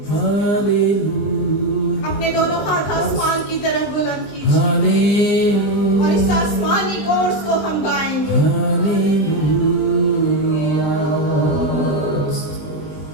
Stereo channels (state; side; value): late; right; 19 ms